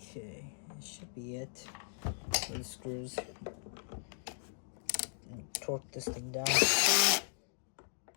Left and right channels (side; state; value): right; silent; digital silence